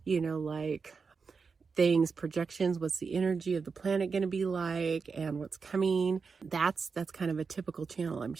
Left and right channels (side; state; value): left; quieter; 5.1 dB